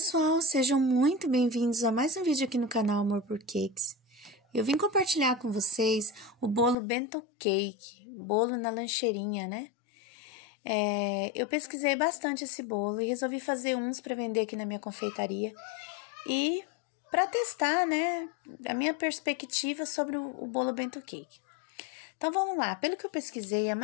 sejam muito bem-vindos a mais um vídeo aqui no canal Amor por Cakes. Eu vim compartilhar com vocês o bolo bento cake, bolo na lancheirinha, né? Eu pesquisei bastante esse bolo e resolvi fazer uns para vender aqui na minha confeitaria e para testar, né, a minha perspectiva sobre o bolo bento cake. Então vamos lá, pelo que eu pesquisei, a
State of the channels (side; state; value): right; drops out; at 6.8 s